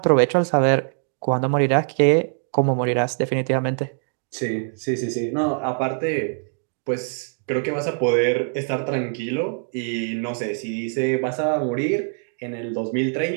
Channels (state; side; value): silent; left; 63 dB below the other